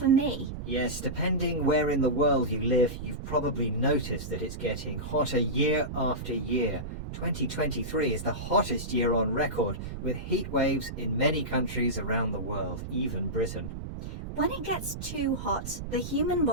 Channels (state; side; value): noise; right; rumble, 7 dB below the sound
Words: me. Yes, depending where in the world you live, you've probably noticed that it's getting hotter year after year. 2023 is the hottest year on record, with heat waves in many countries around the world, even Britain. When it gets too hot, the human